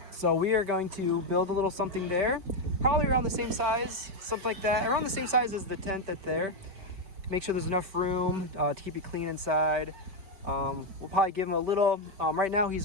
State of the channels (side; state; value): left; late; 5.2 ms